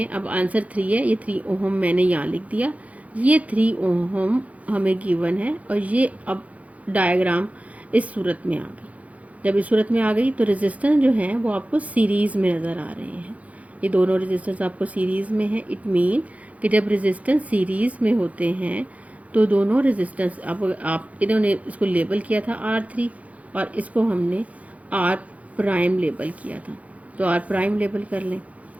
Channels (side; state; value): left; late; 0.068 ms